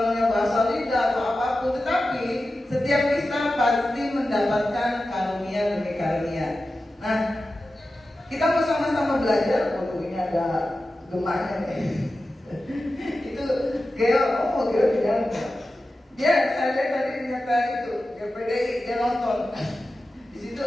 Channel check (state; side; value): normal; both; correlation 0.93